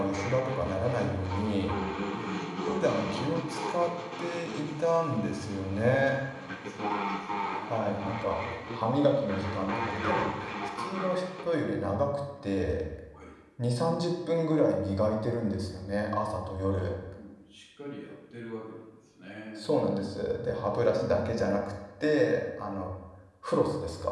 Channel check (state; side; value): identical; both; correlation 1.00